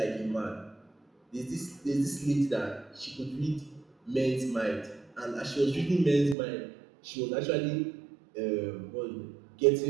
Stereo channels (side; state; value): left; drops out; at 6.4 s